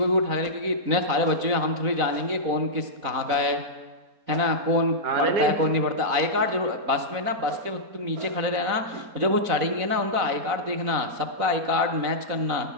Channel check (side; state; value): left; late; 4.0 ms